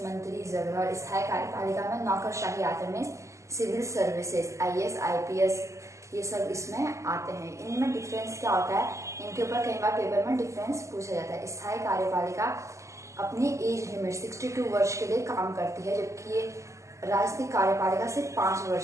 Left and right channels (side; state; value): left; late; 0.15 ms